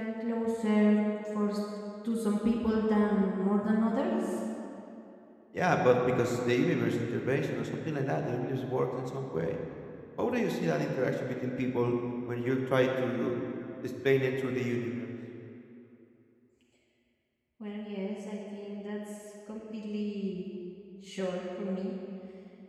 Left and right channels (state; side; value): identical; both; correlation 1.00